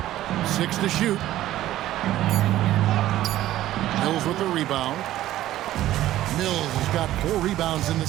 6 to shoot. Mills with the rebound. Mills has got 4 rebounds in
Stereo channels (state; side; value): quieter; left; 14.1 dB